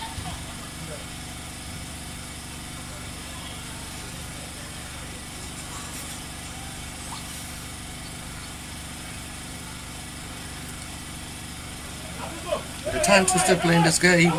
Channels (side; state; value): both; identical; correlation 1.00